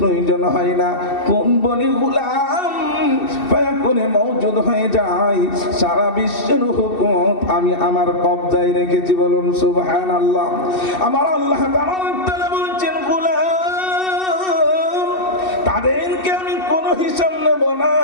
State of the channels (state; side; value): late; right; 2.7 ms